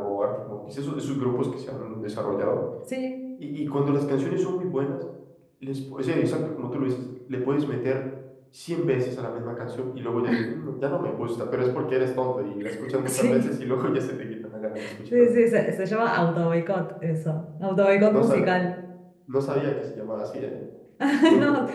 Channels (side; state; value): both; identical; correlation 1.00